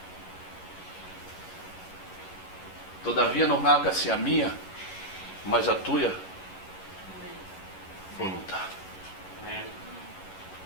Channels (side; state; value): right; late; 11 ms